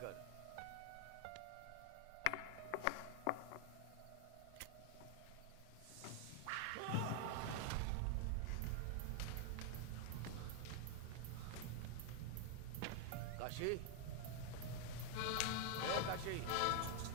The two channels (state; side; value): different; both; correlation 0.00